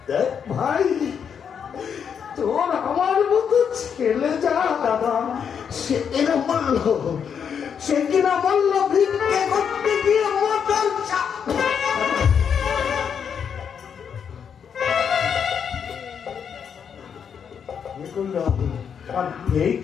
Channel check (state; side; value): quieter; right; 7.4 dB